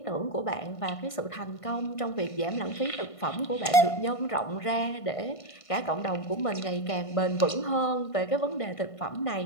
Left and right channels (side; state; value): right; late; 1.5 ms